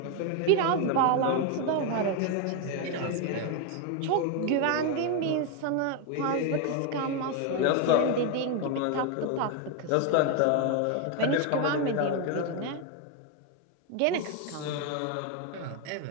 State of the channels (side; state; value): both; different; correlation 0.01